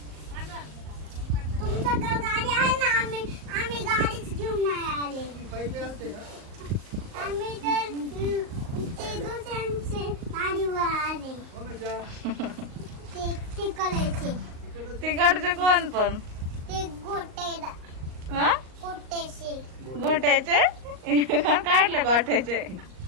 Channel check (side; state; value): left; late; 38 ms